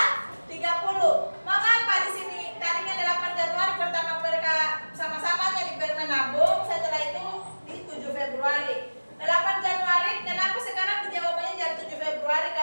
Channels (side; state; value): both; inverted; correlation -1.00